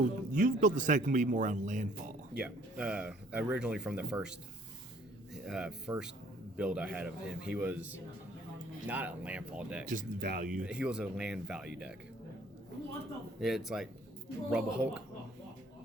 you've built the deck to be more around landfall. Yeah. Originally from the first build I had of him, he was not a landfall deck. Just value. He was a land value deck. It's like Rubble Hulk.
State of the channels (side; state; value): both; normal; correlation 0.59